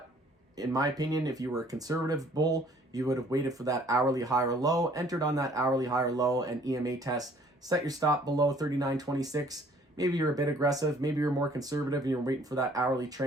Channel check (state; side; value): normal; both; correlation 0.58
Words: in my opinion, if you were a conservative bull, you would have waited for that hourly higher low, entered on that hourly higher low and EMA test, set your stop below 39.26. Maybe you're a bit aggressive, maybe you're more conservative and you're waiting for that hourly